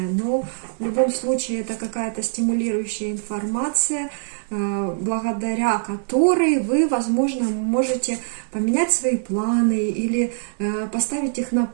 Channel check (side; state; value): left; silent; 64 dB below the other